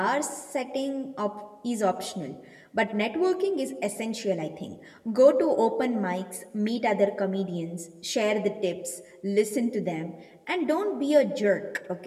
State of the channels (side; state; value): both; identical; correlation 1.00